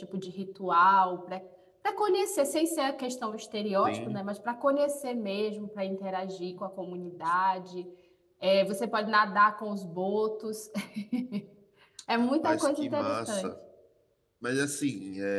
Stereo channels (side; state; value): both; identical; correlation 1.00